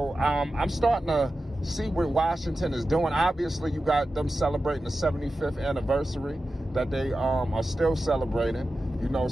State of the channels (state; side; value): normal; both; correlation 0.93